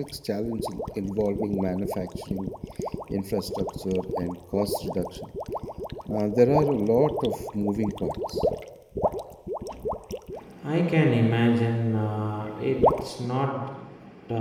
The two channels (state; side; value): identical; both; correlation 1.00